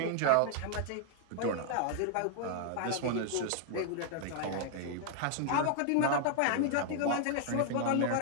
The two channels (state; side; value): different; both; correlation 0.00